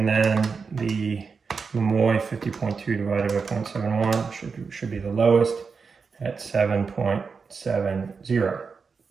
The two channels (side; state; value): left; quieter; 5.2 dB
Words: then the Momoi 50.2 divided by 0.71 should be the lowest at 7.70.